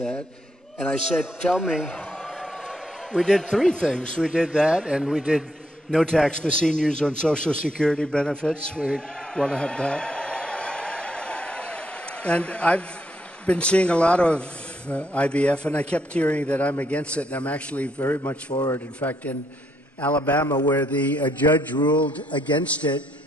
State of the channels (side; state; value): both; normal; correlation 0.75